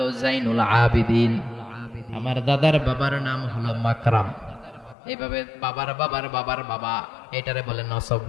জাইনুল আবিদিন, আমার দাদার বাবার নাম হলো মাকরাম। এইভাবে বাবার বাবার বাবার বাবা, এটারে বলে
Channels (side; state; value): right; drops out; at 5.0 s